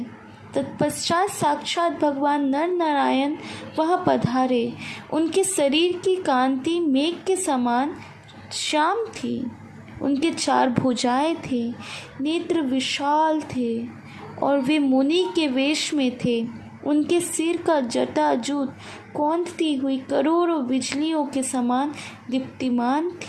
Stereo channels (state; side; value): identical; both; correlation 1.00